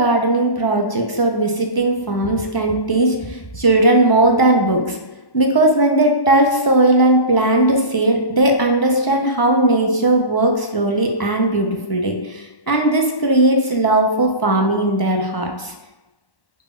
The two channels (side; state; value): right; late; 1.0 ms